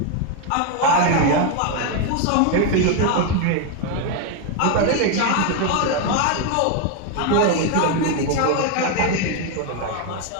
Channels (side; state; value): both; different; correlation 0.01